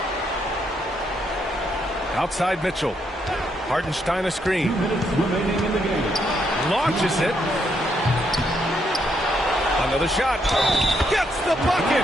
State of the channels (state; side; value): normal; both; correlation 0.76